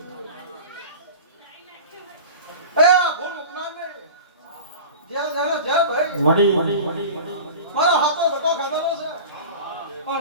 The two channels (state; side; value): inverted; both; correlation -0.35